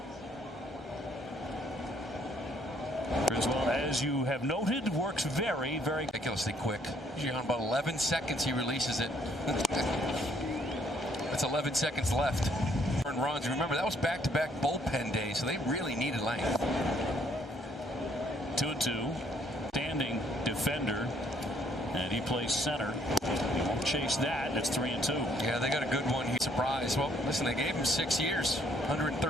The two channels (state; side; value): normal; both; correlation 0.66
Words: Criswell, as you have noted, works very, very ridiculously quick. Usually on about 11 seconds he releases it. That's 11 seconds left. Runs. Remember, that was back-to-back bullpen days, so they really needed length. 2-2. Standing defender. And he plays center. He won't chase that. It's 3-2. Yeah, they got a good one. He's surprised. Well, listen, they gave him 6 years,